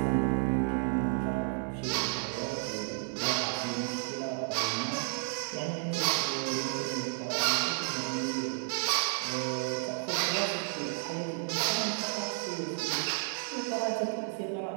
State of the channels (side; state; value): left; silent; 56 dB below the other